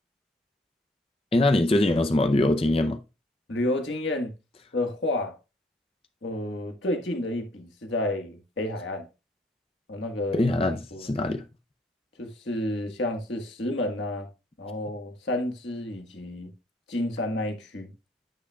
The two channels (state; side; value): normal; both; correlation 0.66